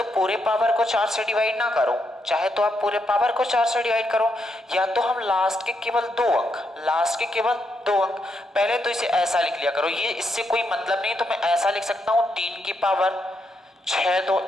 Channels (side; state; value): both; normal; correlation 0.80